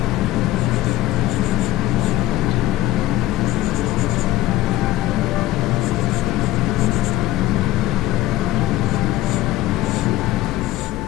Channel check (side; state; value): right; quieter; 15.1 dB